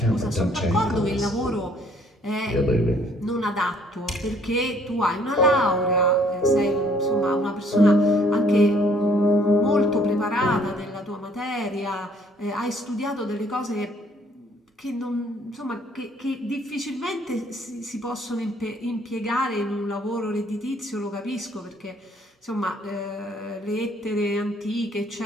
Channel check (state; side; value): normal; both; correlation 0.62